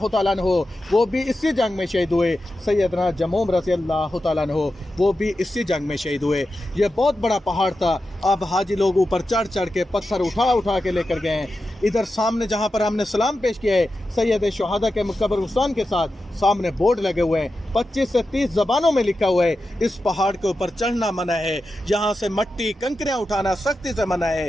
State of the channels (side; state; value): both; normal; correlation 0.91